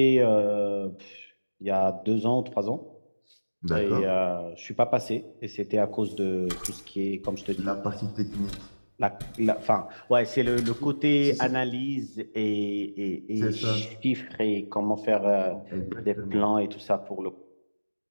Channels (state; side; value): inverted; both; correlation -1.00